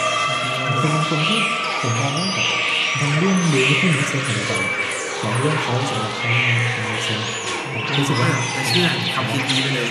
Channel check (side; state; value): both; identical; correlation 1.00